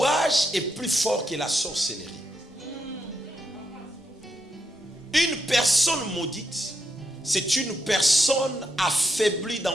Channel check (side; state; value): both; normal; correlation 0.82